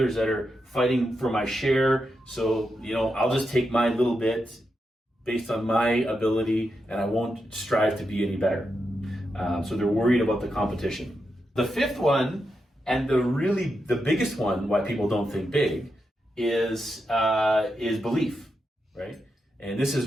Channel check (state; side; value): normal; both; correlation 0.86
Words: that are fighting for my share. So, I'll just take my little bit based on my ability and I won't strive to be any better. So they're worried about the competition. The fifth one, and the biggest one why people don't think big is belief, right? And this